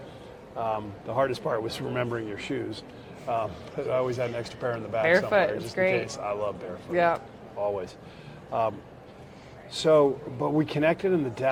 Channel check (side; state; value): both; identical; correlation 1.00